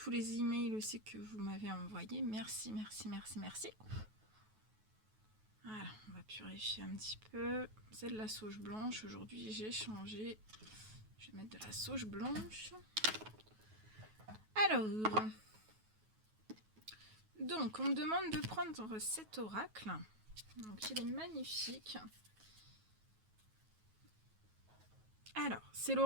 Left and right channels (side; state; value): left; late; 9.3 ms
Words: les emails aussi que vous m'avez envoyés. Merci. Voilà, on va purifier un petit peu. C'est de la sauge blanche. Aujourd'hui, j'ai changé. Je vais mettre de la sauge blanche. Alors, donc, on me demande de prendre cet oracle. Donc, il est magnifique. Alors, c'est